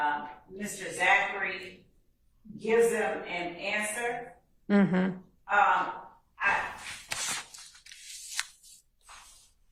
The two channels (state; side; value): identical; both; correlation 1.00